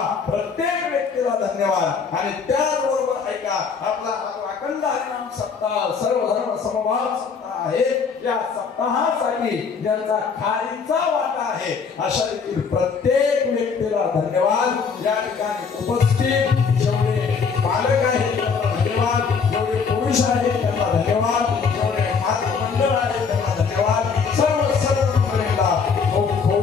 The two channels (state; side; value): quieter; right; 5.6 dB